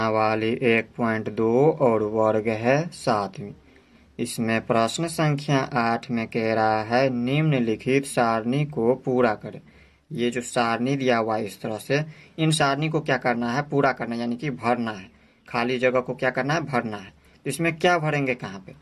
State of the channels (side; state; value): both; identical; correlation 1.00